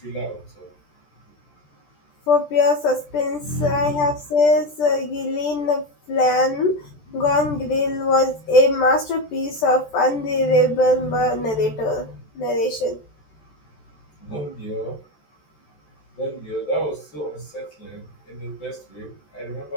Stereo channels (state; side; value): late; right; 14 ms